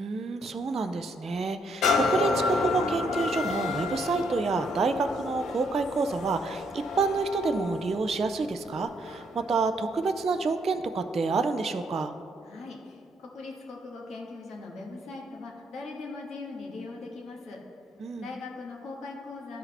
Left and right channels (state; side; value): normal; both; correlation 0.72